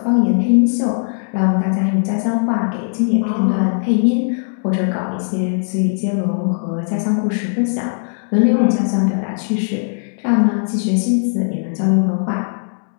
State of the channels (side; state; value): right; silent; digital silence